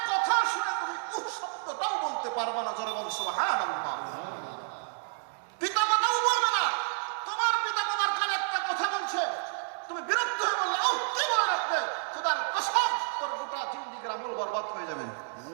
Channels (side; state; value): left; silent; digital silence